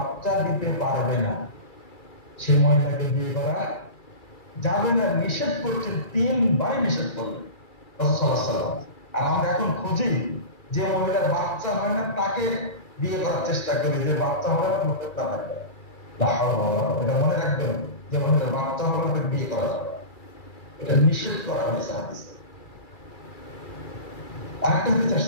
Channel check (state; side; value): late; right; 2.3 ms